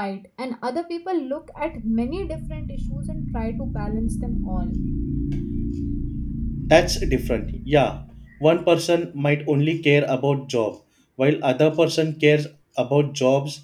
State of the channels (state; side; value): identical; both; correlation 1.00